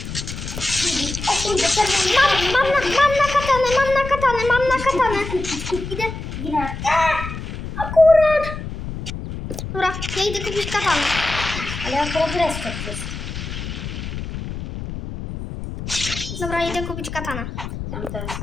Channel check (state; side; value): noise; left; rumble, 8 dB below the sound